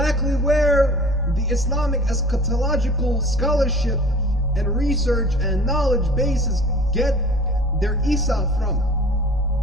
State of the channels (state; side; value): normal; both; correlation 0.44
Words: where the Islamic eschatological scholarship and research and knowledge bases get their Isa from.